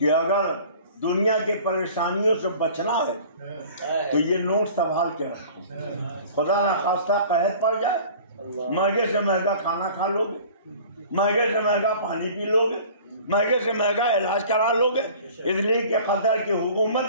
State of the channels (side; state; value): both; inverted; correlation -0.46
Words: اگر دنیا کی پریشانیوں سے بچنا ہے تو یہ نوٹ سنبھال کے رکھو. خدا نخواستہ قحط پڑ جائے، مہنگے سے مہنگا کھانا کھا لو گے، مہنگے سے مہنگا پانی پی لو گے، مہنگے سے مہنگا علاج کرا لو گے. اس لیے کہ قطر کی